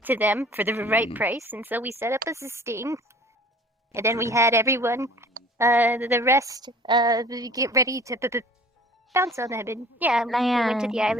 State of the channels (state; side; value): normal; both; correlation 0.47